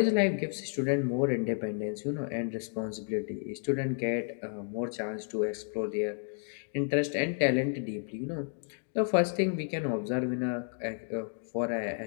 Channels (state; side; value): silent; right; 57 dB below the other